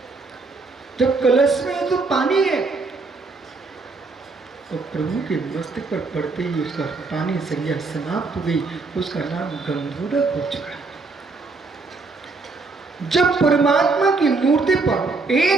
जब कलश में तो पानी है और प्रभु के मस्तक पर पड़ते ही उसका पानी संज्ञा समाप्त हो गई, उसका नाम गंधोदक हो चुका। जब परमात्मा की मूर्ति पर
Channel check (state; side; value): quieter; left; 3.9 dB